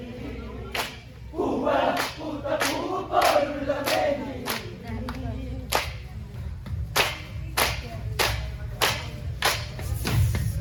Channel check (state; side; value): identical; both; correlation 1.00